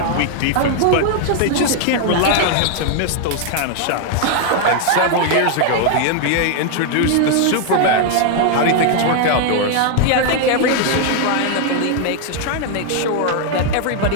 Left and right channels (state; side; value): different; both; correlation 0.00